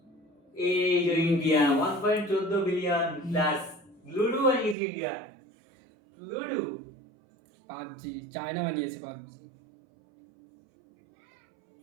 এই যে ইন্ডিয়া 1.14 বিলিয়ন প্লাস লুডো বানিয়েছে ইন্ডিয়া। লুডো পাবজি চায়না বানিয়েছে পাবজি।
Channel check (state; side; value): drops out; left; at 4.8 s